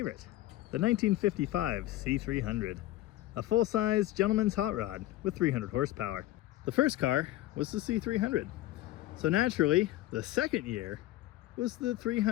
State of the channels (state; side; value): quieter; right; 15.9 dB